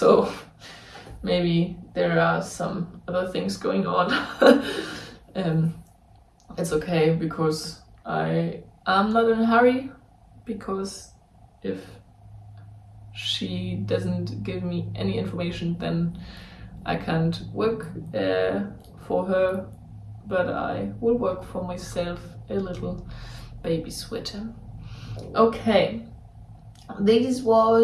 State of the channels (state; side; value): identical; both; correlation 1.00